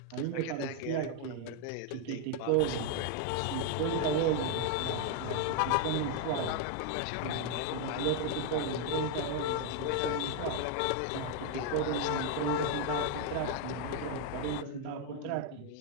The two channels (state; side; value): different; both; correlation 0.01